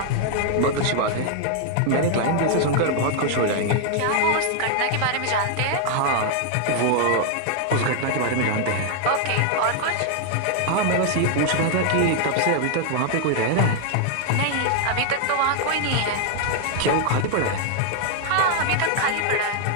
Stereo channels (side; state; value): both; different; correlation 0.00